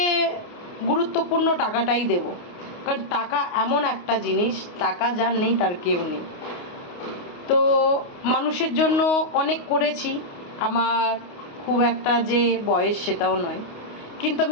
গুরুত্বপূর্ণ টাকাটাই দেব। কারণ টাকা এমন একটা জিনিস, টাকা যার নেই তার কেউ নেই। তো মানুষের জন্য অনেক করেছি, আমার খুব একটা যে বয়স সেটাও নয়, কিন্তু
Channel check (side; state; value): right; late; 28 ms